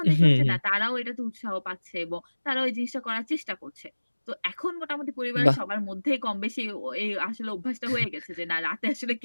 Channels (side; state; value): both; inverted; correlation -1.00